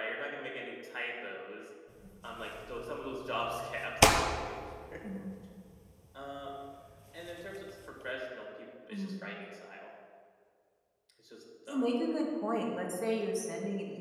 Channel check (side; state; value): both; identical; correlation 1.00